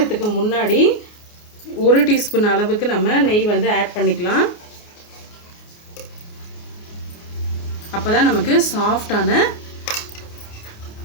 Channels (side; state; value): right; late; 29 ms